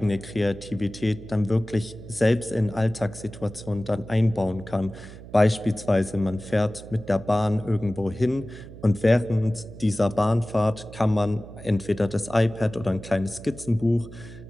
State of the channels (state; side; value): noise; right; hum, 16 dB below the sound